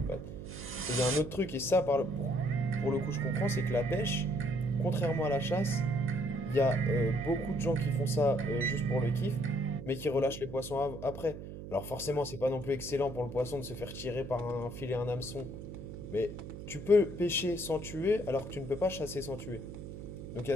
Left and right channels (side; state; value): right; noise; hum, 10 dB below the sound